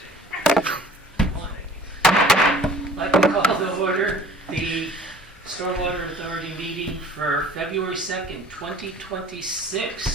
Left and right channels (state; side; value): normal; both; correlation 0.49